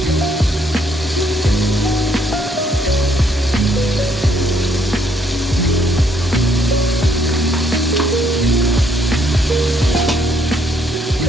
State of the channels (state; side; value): normal; both; correlation 0.68